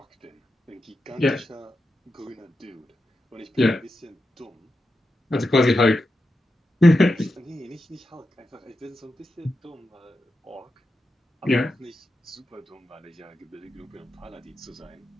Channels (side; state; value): both; normal; correlation 0.89